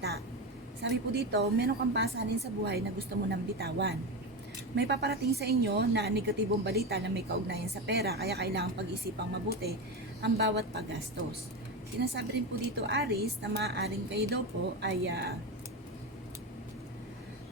Sabi po dito, meron kang pasanin sa buhay na gusto mo nang bitawan. May paparating sa inyo na negatibong balita na may kaugnayan sa pera, kaya kailangang pag-isipang mabuti ang bawat paggastos. Sinasabi rin po dito Aris na maaaring kayo daw po ay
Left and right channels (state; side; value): normal; both; correlation 0.18